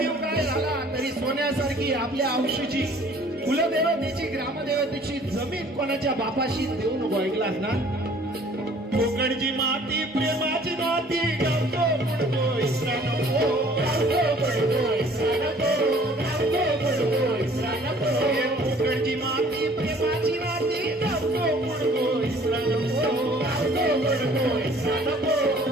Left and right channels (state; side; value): normal; both; correlation 0.54